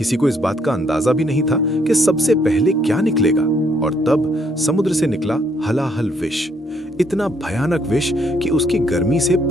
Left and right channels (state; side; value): normal; both; correlation 0.69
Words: को इस बात का अंदाजा भी नहीं था कि सबसे पहले क्या निकलेगा, और तब समुद्र से निकला हलाहल विष। इतना भयानक विष कि उसकी गर्मी से